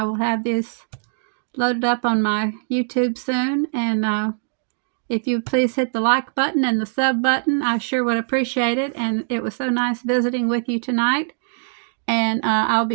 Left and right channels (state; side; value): silent; left; digital silence